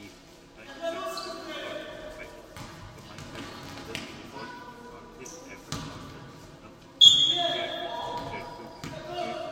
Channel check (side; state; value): both; identical; correlation 1.00